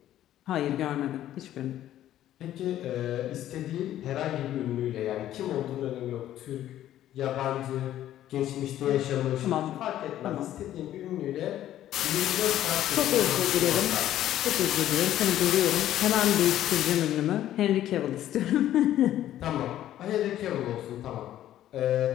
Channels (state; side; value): quieter; right; 12.5 dB